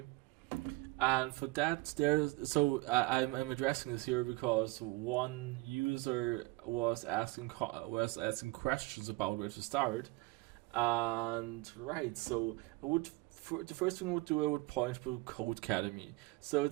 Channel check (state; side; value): quieter; left; 22.8 dB